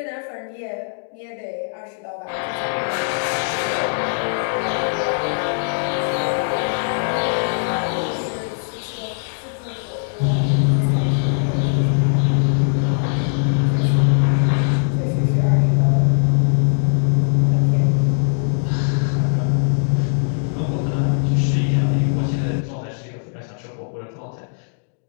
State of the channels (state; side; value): silent; right; digital silence